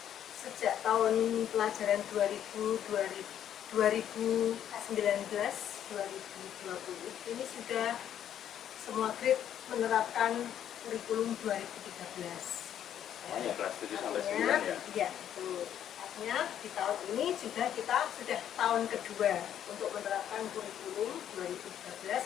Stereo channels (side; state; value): right; quieter; 10.2 dB